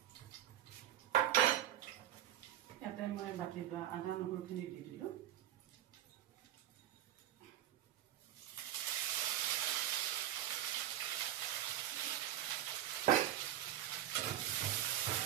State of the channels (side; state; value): left; quieter; 12.0 dB